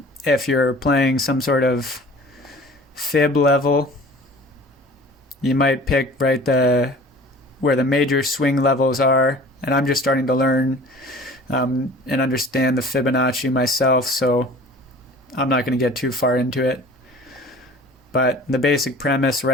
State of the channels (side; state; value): both; normal; correlation 0.45